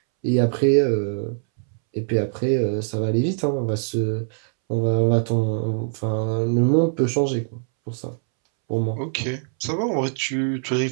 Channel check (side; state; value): left; silent; 64 dB below the other